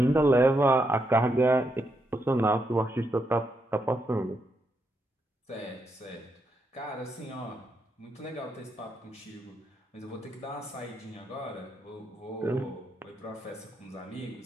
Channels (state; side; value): normal; both; correlation 0.80